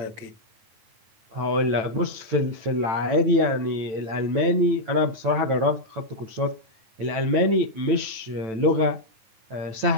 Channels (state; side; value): late; left; 9.0 ms